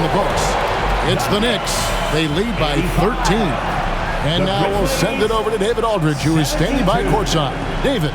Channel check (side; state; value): both; identical; correlation 1.00